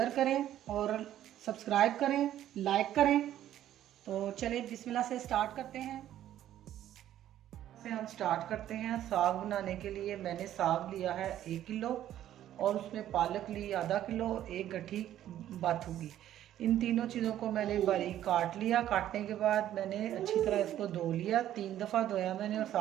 करें और सब्सक्राइब करें, लाइक करें। तो चलिए बिस्मिल्लाह से स्टार्ट करते हैं। से हम स्टार्ट करते हैं। साग बनाने के लिए मैंने साग लिया है 1 किलो और उसमें पालक ली आधा किलो, एक गठी बाथूगी। इन तीनों चीज़ों को मैंने बारीक काट लिया। काटने के बाद मैंने अच्छी तरह इसको धो लिया, 3 दफ़ा धोया मैंने और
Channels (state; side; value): quieter; left; 12.1 dB